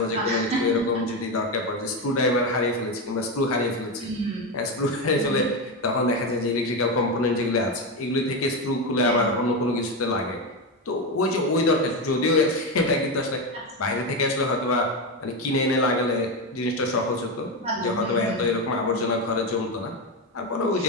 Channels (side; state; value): both; normal; correlation 0.13